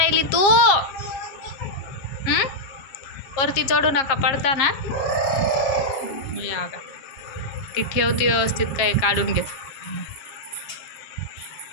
तू? वरती चढू नका, पडता ना. या का ती ठेवती व्यवस्थित, काय काढून घेत.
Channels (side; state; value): right; late; 7.4 ms